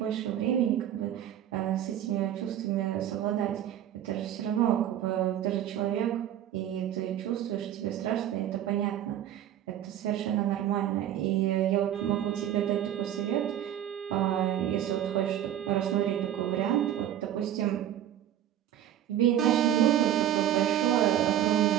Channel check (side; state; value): left; quieter; 11.2 dB